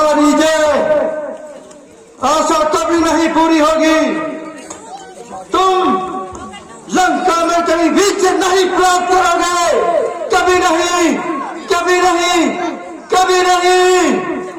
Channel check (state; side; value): identical; both; correlation 1.00